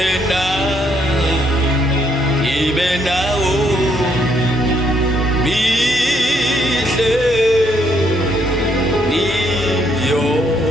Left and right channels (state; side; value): normal; both; correlation 0.71